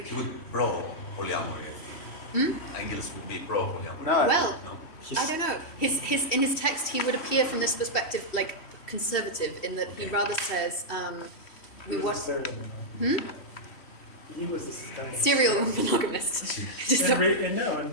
He would pro polyamory, I think. Engels would be pro polyamory. Well, I don't know. In his text, he would appear from this perspective like conservative, in that he rather says He was this kind of serial monogamist.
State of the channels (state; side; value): late; right; 3.1 ms